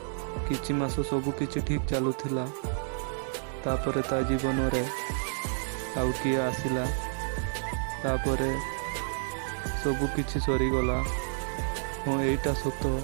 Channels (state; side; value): silent; left; digital silence